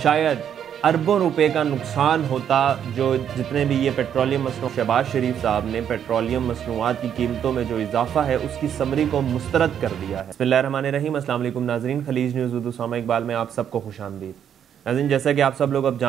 شاید اربوں روپے کا نقصان ہوتا، جو جتنے بھی یہ پیٹرولیم مصنوعات شہباز شریف صاحب نے پیٹرولیم مصنوعات کی قیمتوں میں جو اضافہ ہے اس کی سمری کو مسترد کر دیا ہے۔ بسم اللہ الرحمن الرحیم، السلام علیکم ناظرین، خلیج نیوز اردو سامع اقبال میں آپ سب کو خوش آمدید۔ ناظرین، جیسا کہ آپ سب لوگ اب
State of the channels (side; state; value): left; quieter; 9.0 dB